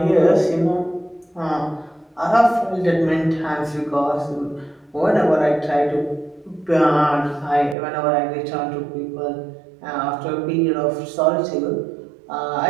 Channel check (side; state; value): left; drops out; at 7.8 s